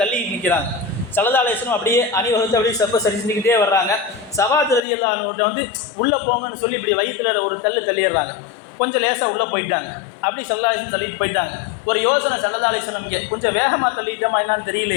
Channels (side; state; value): right; drops out; at 4.9 s